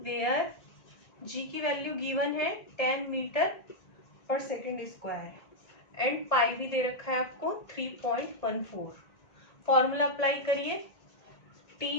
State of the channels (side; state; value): right; late; 1.7 ms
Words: g की वैल्यू गिवन है 10 मीटर पर सेकेंड स्क्वायर एंड पाई भी दे रखा है आपको 3.14। फॉर्मूला अप्लाई करिए, T